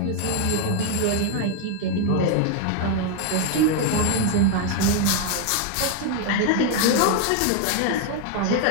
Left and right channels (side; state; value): both; different; correlation 0.01